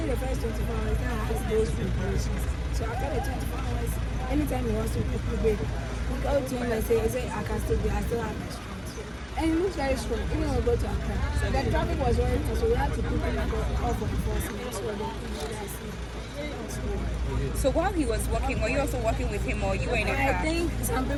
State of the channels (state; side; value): identical; both; correlation 1.00